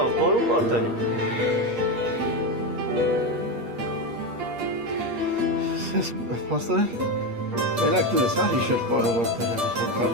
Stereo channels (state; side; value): late; left; 8.5 ms